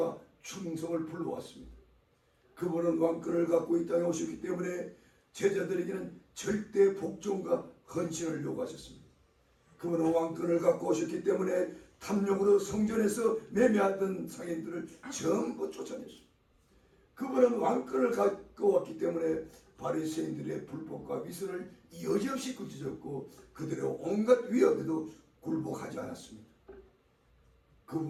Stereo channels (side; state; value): both; identical; correlation 1.00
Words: 충성을 불러왔습니다. 그분은 왕권을 갖고 이 땅에 오셨기 때문에 제자들에게는 절대 복종과 헌신을 요구하셨습니다. 그분은 왕권을 갖고 오셨기 때문에 탐욕으로 성전에서 매매하던 상인들을 전부 쫓아냈습니다. 그분은 왕권을 갖고 왔기 때문에 바리새인들의 불법과 미선을 여지없이 꾸짖었고 그들의 온갖 위협에도 굴복하지 않았습니다.